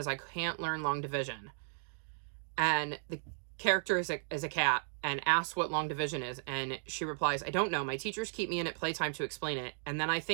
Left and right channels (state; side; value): silent; left; digital silence